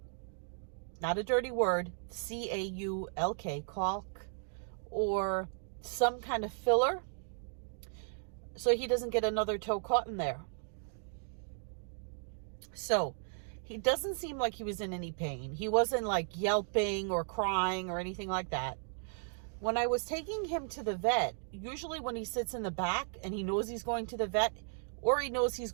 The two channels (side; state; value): left; silent; 54 dB below the other